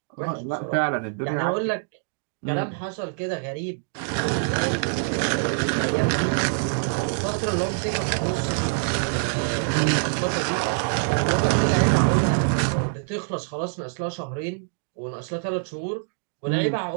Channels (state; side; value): silent; left; digital silence